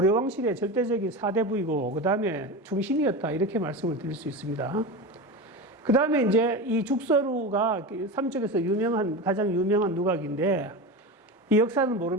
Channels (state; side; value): normal; both; correlation 0.24